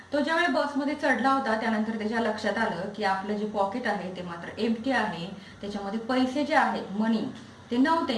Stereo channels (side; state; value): both; identical; correlation 1.00